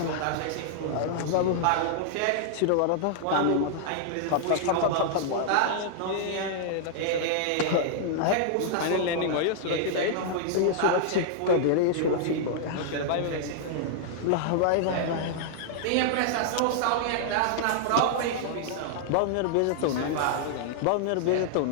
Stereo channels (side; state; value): both; different; correlation -0.01